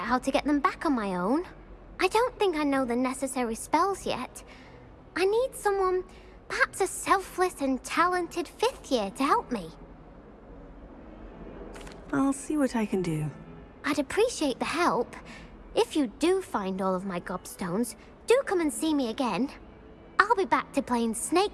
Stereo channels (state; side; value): identical; both; correlation 1.00